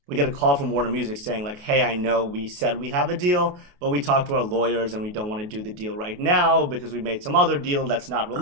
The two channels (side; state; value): left; late; 28 ms